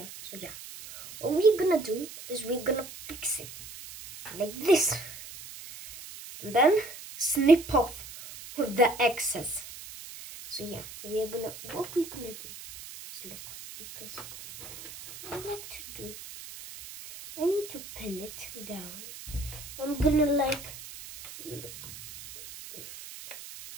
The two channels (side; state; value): right; noise; hiss, 14 dB below the sound